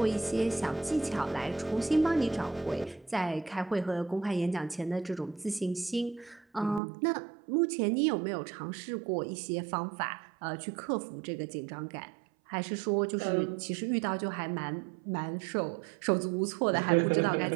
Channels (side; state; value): left; drops out; at 6.8 s